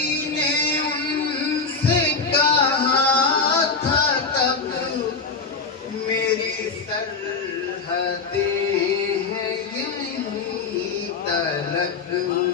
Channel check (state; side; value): quieter; right; 4.7 dB